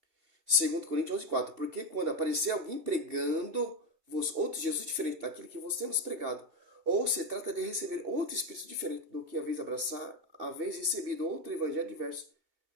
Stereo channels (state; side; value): late; left; 2.7 ms